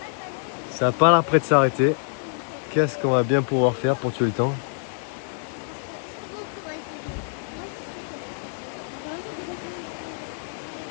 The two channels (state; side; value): silent; right; digital silence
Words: Ça n'a pas l'air près de s'arrêter. Qu'est-ce qu'on va bien pouvoir faire pour tuer le temps?